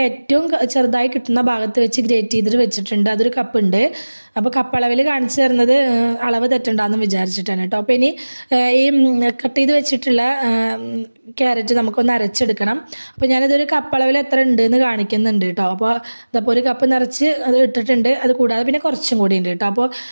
ഏറ്റവും ചെറുതായി കിട്ടുന്ന ഭാഗത്ത് വെച്ച് ഗ്രേറ്റ് ചെയ്തിട്ട് വെച്ചിട്ടുണ്ട്. അതൊരു കപ്പ് ഉണ്ട്. അപ്പോൾ കപ്പ് അളവിൽ കാണിച്ചു തരുന്നത് അളവ് തെറ്റുണ്ടാന്ന് വിചാരിച്ചിട്ടാണ് കേട്ടോ. അപ്പോൾ ഇനി ഈ കട്ട് ചെയ്ത് വെച്ചിട്ടുള്ള ക്യാരറ്റ് നമുക്കൊന്ന് അരച്ചെടുക്കണം. അപ്പോൾ ഞാനിതൊരു കപ്പ് അളവിൽ എത്ര ഉണ്ട് എന്ന് കാണിക്കുന്നുണ്ട് കേട്ടോ. അപ്പോൾ ഇതപ്പോൾ ഒരു കപ്പ് നിറച്ച് അത് ഇട്ടിട്ടുണ്ട്. അത് കൂടാതെ പിന്നെ കുറച്ചും കൂടി ഉണ്ട് കേട്ടോ. അപ്പോൾ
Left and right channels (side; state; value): both; inverted; correlation -1.00